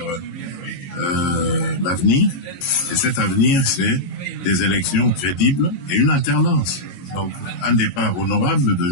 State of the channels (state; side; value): late; right; 22 ms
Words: l'avenir. Et cet avenir, c'est des élections crédibles et une alternance. Donc, un départ honorable de